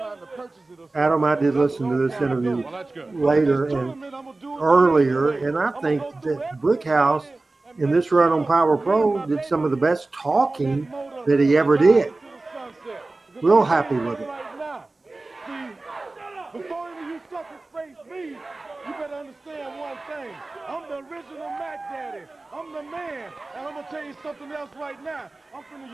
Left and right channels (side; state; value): left; quieter; 3.2 dB